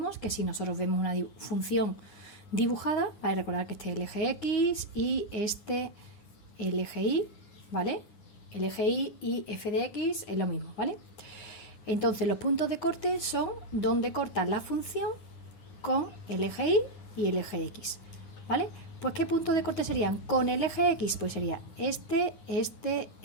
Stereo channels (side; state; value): right; late; 9.7 ms